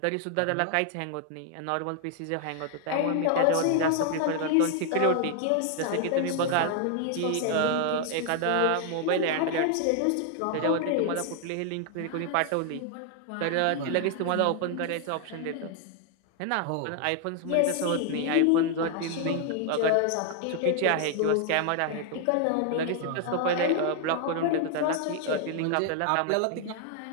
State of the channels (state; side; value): different; both; correlation 0.00